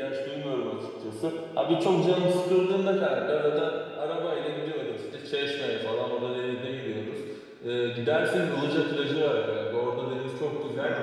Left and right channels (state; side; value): identical; both; correlation 1.00